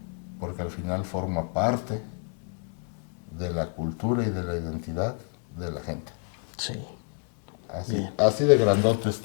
Porque al final forma parte de la cultura y de la identidad de la gente. Sí. Así de grandote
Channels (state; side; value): quieter; right; 36.8 dB